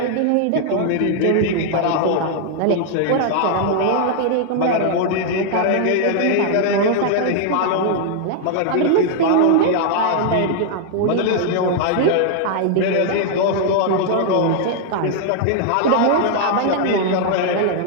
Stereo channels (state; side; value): different; both; correlation -0.01